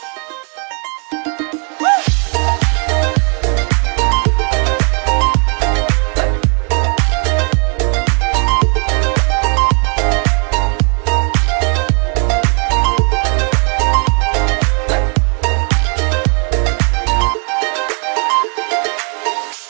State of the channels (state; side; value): quieter; left; 39.6 dB